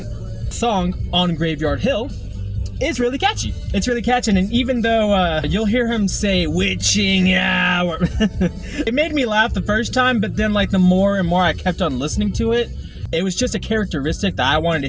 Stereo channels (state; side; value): identical; both; correlation 1.00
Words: the song On Graveyard Hill is really catchy. It's really catchy, and even though you'll hear him say witching hour, it made me laugh the first time, but then like the more and more I kept on listening to it, it was just a characteristic that I wanted to